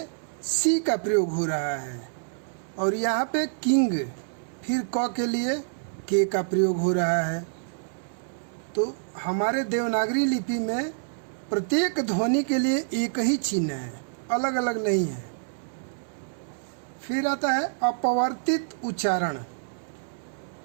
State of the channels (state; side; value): silent; left; 59 dB below the other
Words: सी का प्रयोग हो रहा है, और यहाँ पे किंग फिर क के लिए के का प्रयोग हो रहा है। तो हमारे देवनागरी लिपि में प्रत्येक ध्वनि के लिए एक ही चिन्ह है, अलग अलग नहीं है। फिर आता है अपवर्तित उच्चारण।